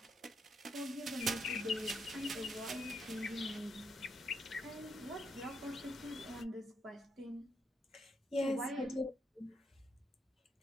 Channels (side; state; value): both; normal; correlation 0.77